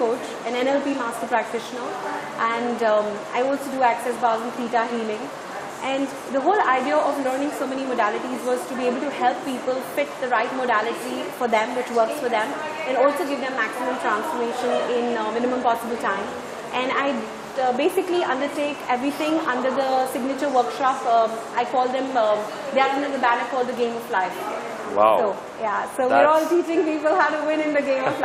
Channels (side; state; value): both; identical; correlation 1.00